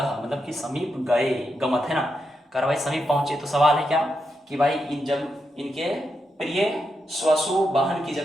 मतलब कि समीप गए, गमत, है ना। कर भाई समीप पहुंचे। तो सवाल है क्या कि भाई जब इनके प्रिय स्वसु बहन की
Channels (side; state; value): both; normal; correlation 0.84